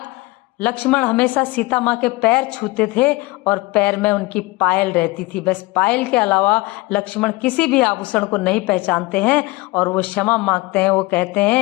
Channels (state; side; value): quieter; right; 21.8 dB